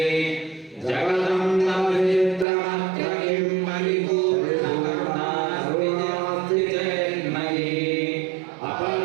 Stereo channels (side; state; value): left; drops out; at 2.5 s